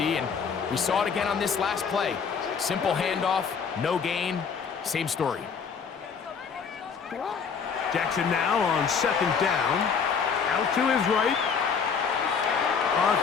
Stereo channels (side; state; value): right; quieter; 6.2 dB